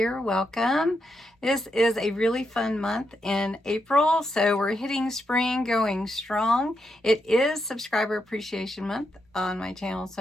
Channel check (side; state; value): both; normal; correlation 0.82